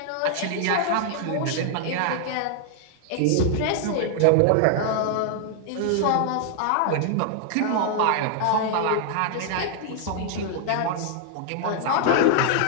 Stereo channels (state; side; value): different; both; correlation 0.00